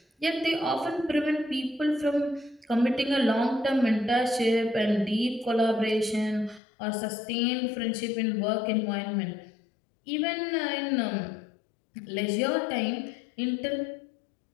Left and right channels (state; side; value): drops out; right; at 6.6 s